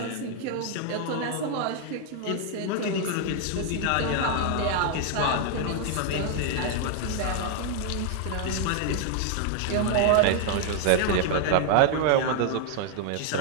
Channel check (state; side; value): different; both; correlation 0.00